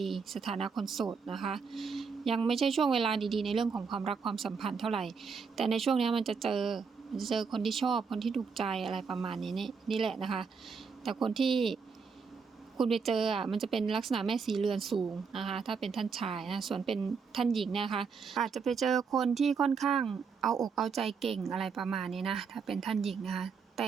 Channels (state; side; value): quieter; left; 5.5 dB